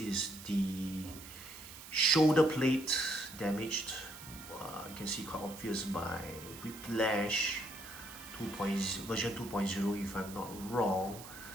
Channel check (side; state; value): right; noise; hiss, 15 dB below the sound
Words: the shoulder plate damaged. You can see quite obvious by Whiplash version 2.0 if I'm not wrong.